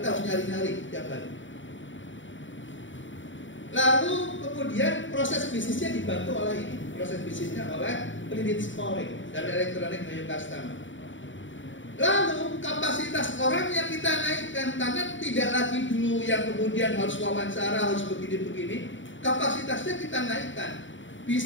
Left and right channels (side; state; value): right; late; 0.55 ms